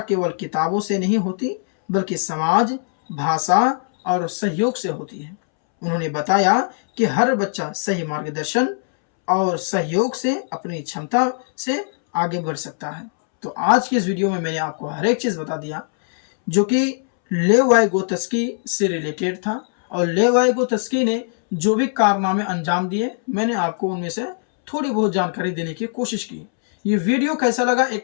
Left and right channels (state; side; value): silent; right; 65 dB below the other